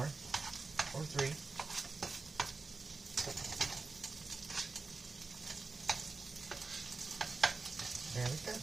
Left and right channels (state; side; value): quieter; left; 4.0 dB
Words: Or 3. There we go.